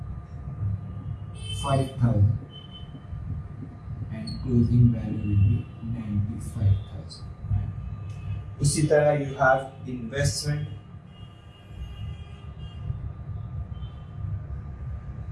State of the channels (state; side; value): identical; both; correlation 1.00